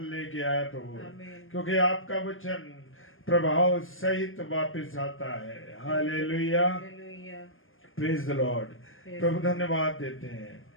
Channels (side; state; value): right; late; 0.59 ms